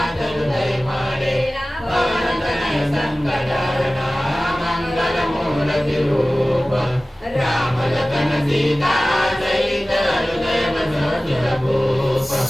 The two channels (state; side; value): normal; both; correlation 0.97